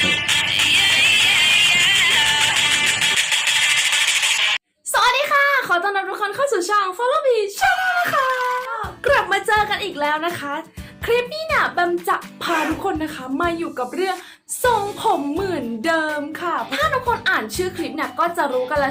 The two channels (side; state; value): both; identical; correlation 1.00